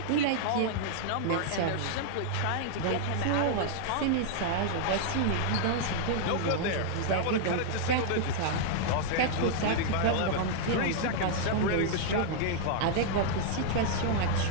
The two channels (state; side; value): different; both; correlation -0.01